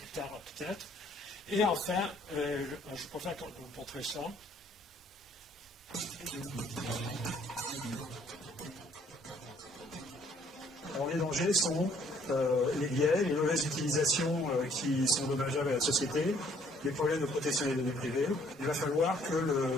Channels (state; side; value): normal; both; correlation 0.62